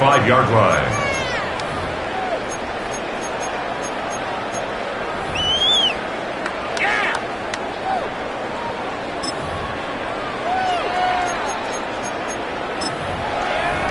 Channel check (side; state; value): both; identical; correlation 1.00